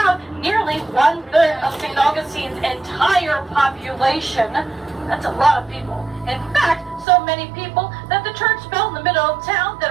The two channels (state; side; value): drops out; left; at 7.1 s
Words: nearly 1/3 of St. Augustine's entire population. That's a lot of people. In fact, so many people that the church bell in the middle of town